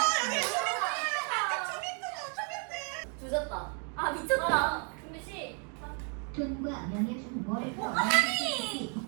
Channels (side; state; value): left; quieter; 39.5 dB